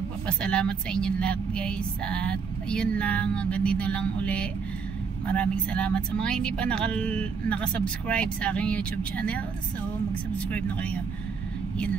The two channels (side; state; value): left; quieter; 5.6 dB